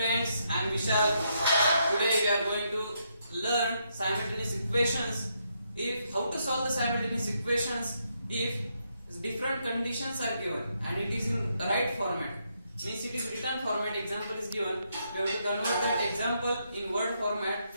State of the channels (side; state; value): both; inverted; correlation -0.78